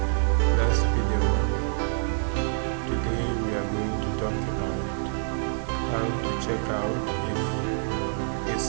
last video, today we are going to talk about how to check out if a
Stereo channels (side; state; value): left; silent; 61 dB below the other